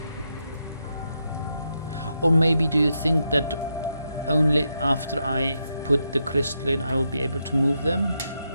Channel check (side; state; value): both; inverted; correlation -0.83